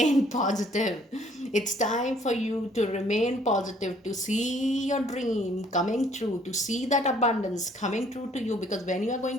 positive. It's time for you to remain positive, to see your dream coming true, to see that abundance coming true to you, because when you are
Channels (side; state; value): both; normal; correlation 0.60